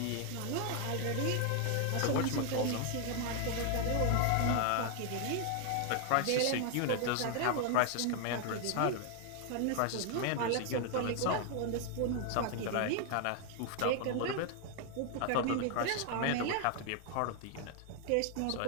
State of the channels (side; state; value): both; different; correlation 0.00